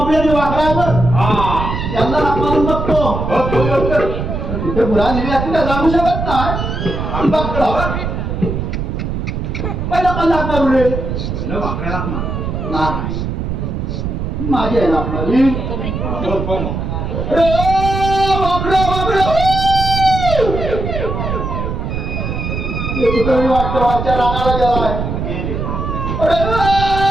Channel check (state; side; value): noise; right; rumble, 3 dB below the sound